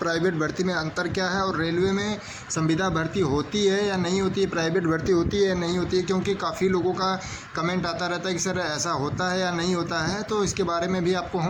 भर्ती में अंतर क्या है, और रेलवे में संविदा भर्ती होती है या नहीं होती है, प्राइवेट भर्ती होती है या नहीं होती है। क्योंकि काफ़ी लोगों का कमेंट आता रहता है कि सर ऐसा होता है या नहीं होता है, तो इसके बारे में भी आपको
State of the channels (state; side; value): identical; both; correlation 1.00